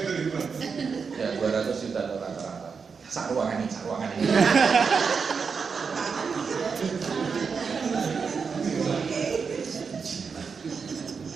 Ya 200 juta rata-rata. Sak ruangan ini.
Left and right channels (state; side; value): quieter; left; 5.6 dB